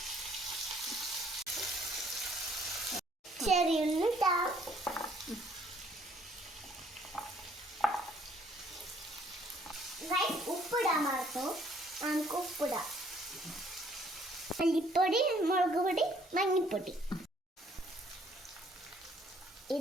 ചെറിയ ഉള്ളി ഇടാം. ഉപ്പിടാൻ മറന്നു. നമുക്ക് ഉപ്പിടാം. മല്ലിപ്പൊടി, മുളക് പൊടി, മഞ്ഞൾപ്പൊടി.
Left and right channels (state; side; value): normal; both; correlation 0.62